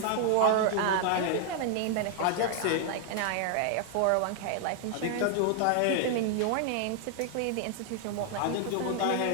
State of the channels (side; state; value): both; different; correlation 0.00